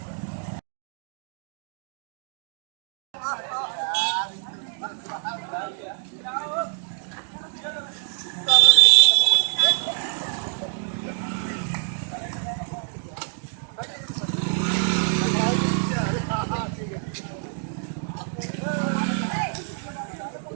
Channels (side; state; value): left; silent; digital silence